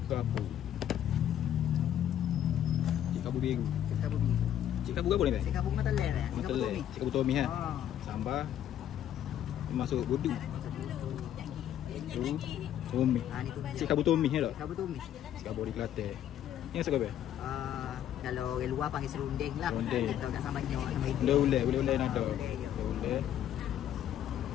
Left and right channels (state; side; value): quieter; right; 10.8 dB